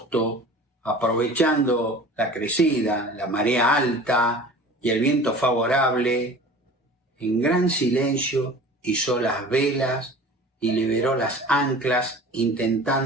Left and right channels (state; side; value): normal; both; correlation 0.41